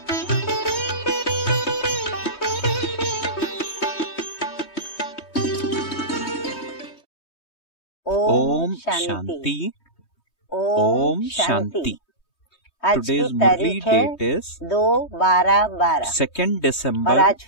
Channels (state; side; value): late; right; 3.2 ms